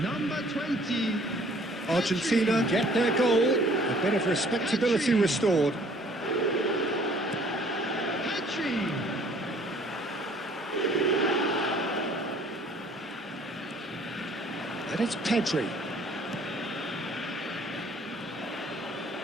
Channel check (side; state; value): both; normal; correlation 0.57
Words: Number 20. Argentina get their goal. A bit of respectability restored. And it's Pedri.